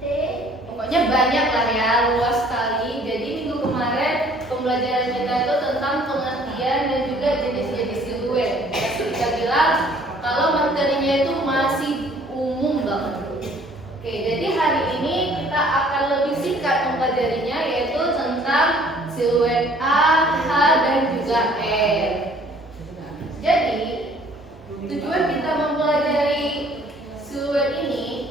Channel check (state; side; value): normal; both; correlation 0.56